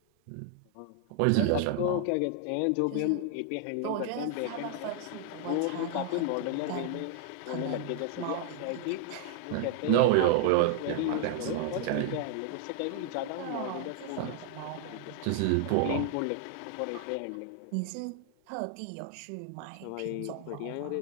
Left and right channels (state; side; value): different; both; correlation 0.00